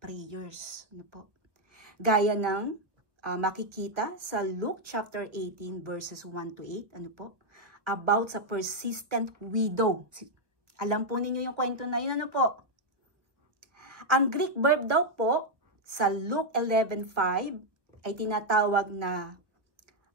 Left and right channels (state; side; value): late; left; 1.0 ms